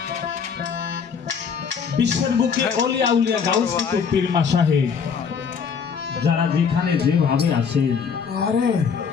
বুকে অলিয়া উলিয়া গাউস কুতুব পীর মাশায়েখ যারা যেখানে যেভাবে আছেন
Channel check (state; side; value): quieter; right; 6.3 dB